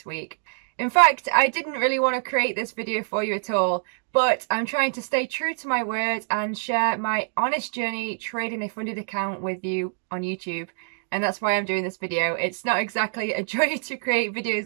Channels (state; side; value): silent; left; digital silence